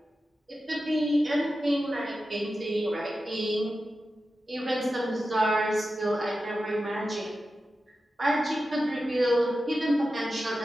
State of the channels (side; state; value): both; normal; correlation 0.92